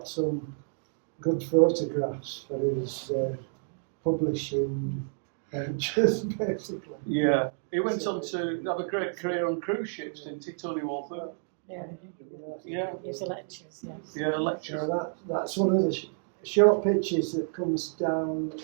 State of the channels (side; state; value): left; silent; digital silence